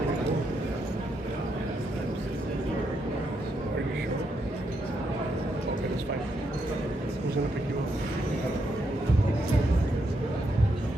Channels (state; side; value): normal; both; correlation 0.79